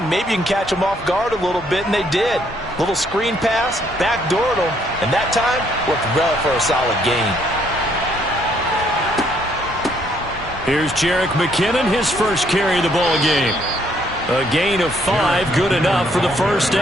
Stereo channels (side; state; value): both; normal; correlation 0.68